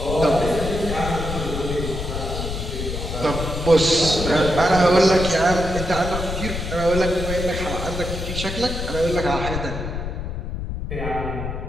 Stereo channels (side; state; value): left; noise; rumble, 5 dB below the sound